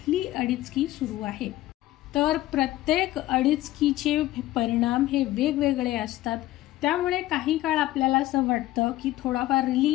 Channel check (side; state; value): right; quieter; 15.8 dB